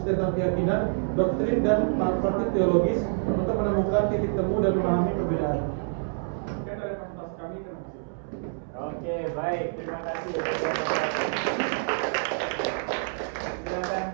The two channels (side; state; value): left; silent; 60 dB below the other